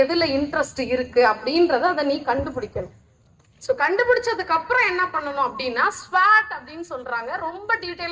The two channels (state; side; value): identical; both; correlation 1.00